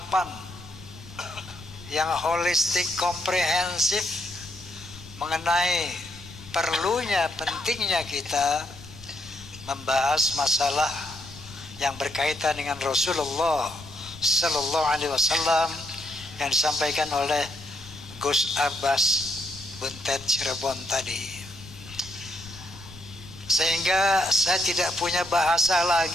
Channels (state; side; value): noise; left; rumble, 17 dB below the sound